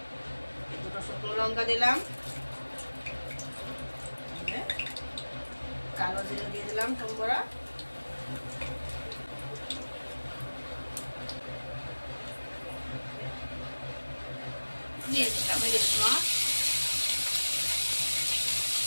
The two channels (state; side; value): inverted; both; correlation -1.00